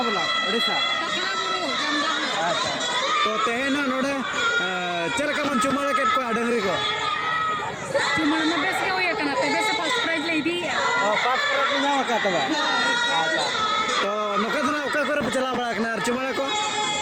बोला ओडिसा अच्छा तो तेना नोडे चरका मन चुमाले के को डंगरी को चुमाले में बेस के होया कना ते बेस फर्स्ट प्राइज ले दी फर्स्ट प्राइज ना का तबा अच्छा तो नोका तो ना ओका करे चला बड़ा कना चुमाले को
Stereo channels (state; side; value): identical; both; correlation 1.00